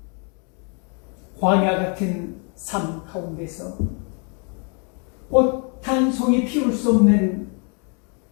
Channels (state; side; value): quieter; right; 37.4 dB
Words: 광야 같은 삶 가운데서 꽃 한 송이 피울 수 없는